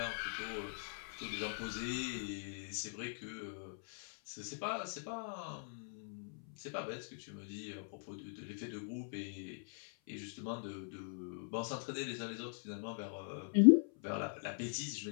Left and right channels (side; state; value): right; silent; 50 dB below the other